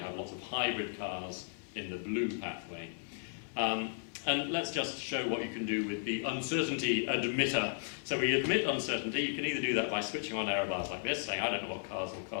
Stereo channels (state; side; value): silent; right; 54 dB below the other